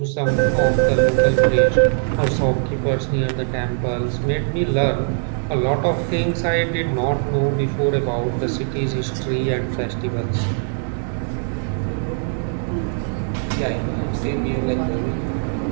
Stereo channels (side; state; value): left; silent; 65 dB below the other